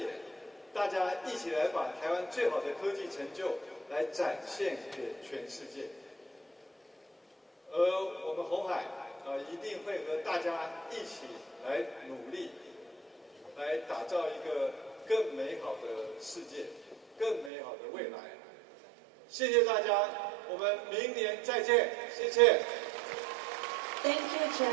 大家一起来把台湾最好的科技成就来展现给全世界。而我们鸿海一定会和大家一起来努力，来打造一个更美好的世界。更美好的未来。谢谢大家，我们明年再见，谢谢。Thank you,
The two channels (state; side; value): drops out; left; at 17.5 s